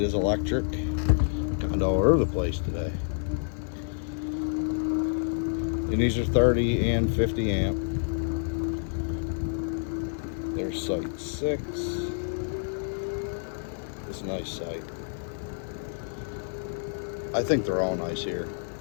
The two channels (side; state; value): right; silent; digital silence